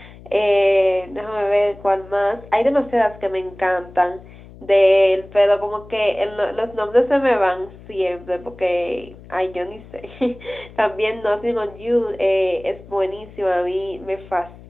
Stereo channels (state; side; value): noise; left; hum, 20 dB below the sound